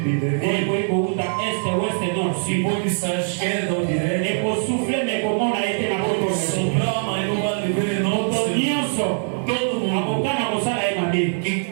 Eko eko uta este, ouest, nord, se sud. pode estar à esquerda ou direita, Eko souffle me komona ete na koto na yo. soprar, mas não vai viver em nome do Moto Senhor. nyonso. Todo mundo Akokana kosala ye mabe. que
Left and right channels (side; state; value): left; silent; 64 dB below the other